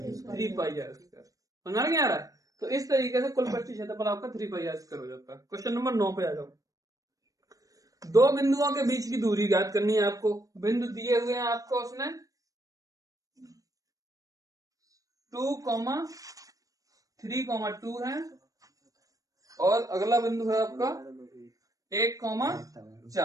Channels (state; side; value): late; left; 0.17 ms